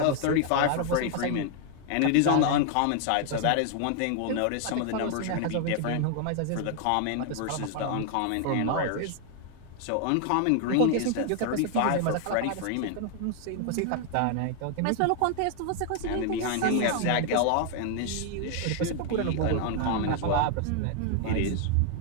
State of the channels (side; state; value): both; different; correlation 0.00